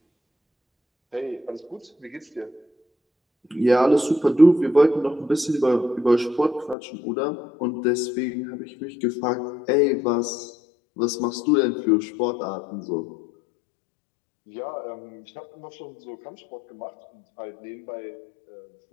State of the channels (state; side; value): drops out; right; at 6.8 s